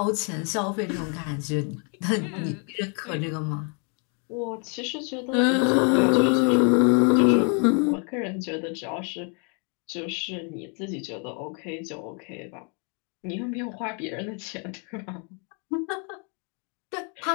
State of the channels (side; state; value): right; quieter; 37.5 dB